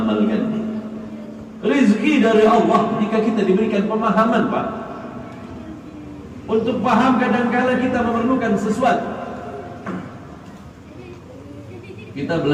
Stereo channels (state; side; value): identical; both; correlation 1.00